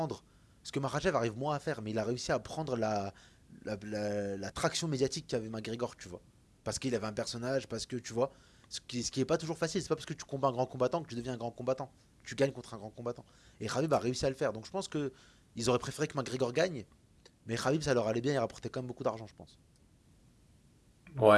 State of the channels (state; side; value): identical; both; correlation 1.00